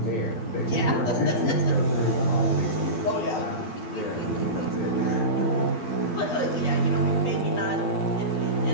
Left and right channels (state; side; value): late; right; 12 ms